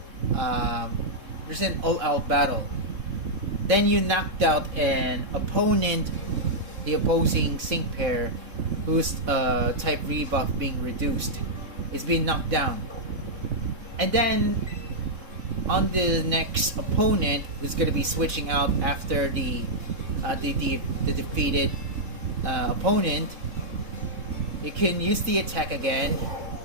there's an all-out battle. Then you knocked out an opponent, the opposing sync pair, whose type rebuff being reduced, is being knocked down. And then on the next opponent, who's going to be switching out after the defeated opponent, you can use the attack again.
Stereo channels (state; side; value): late; left; 3.7 ms